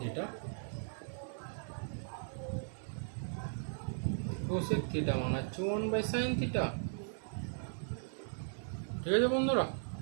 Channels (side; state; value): left; silent; digital silence